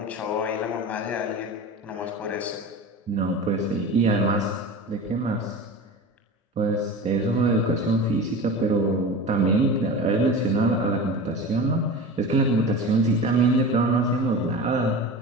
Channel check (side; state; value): both; normal; correlation 0.32